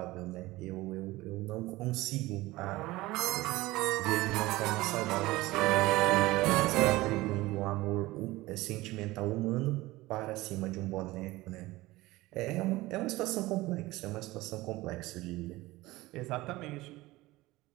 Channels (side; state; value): left; quieter; 19.1 dB